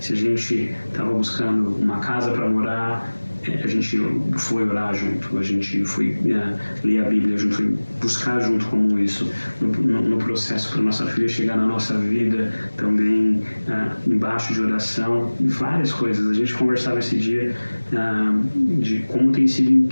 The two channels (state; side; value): inverted; both; correlation -1.00